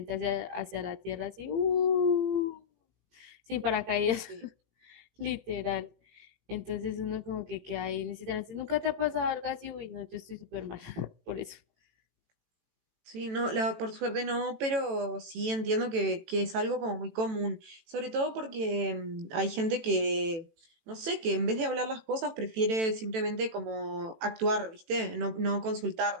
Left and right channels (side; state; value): left; late; 18 ms